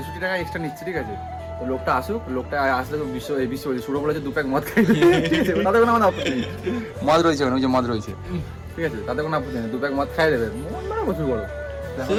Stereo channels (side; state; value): both; identical; correlation 1.00